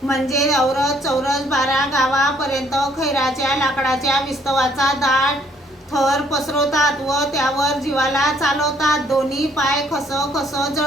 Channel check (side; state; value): both; normal; correlation 0.65